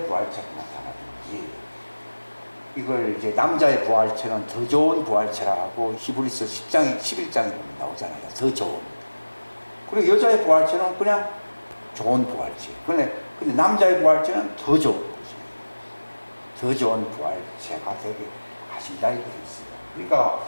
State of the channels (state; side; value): inverted; both; correlation -1.00